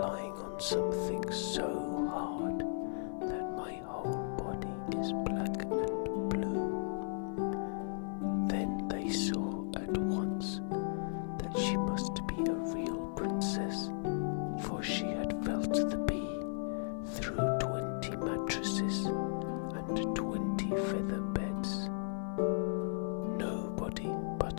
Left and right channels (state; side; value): silent; right; digital silence